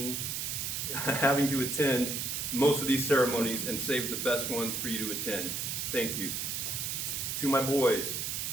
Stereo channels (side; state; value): right; noise; hiss, 2 dB below the sound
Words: having to attend most of these ceremonies and saved the best ones for you to attend. Thank you. To my boys,